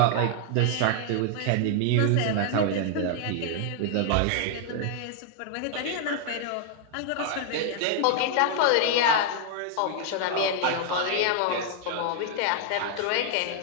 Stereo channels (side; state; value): both; different; correlation 0.00